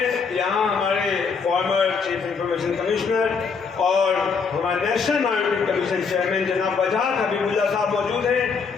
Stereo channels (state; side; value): quieter; right; 5.4 dB